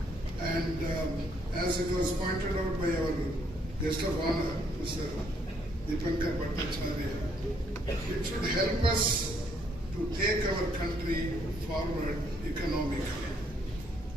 And as it was pointed out by our guest of honor, Mr. Dipankar Bhattacharya, it should help us to take our country forward economically.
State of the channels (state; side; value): normal; both; correlation 0.69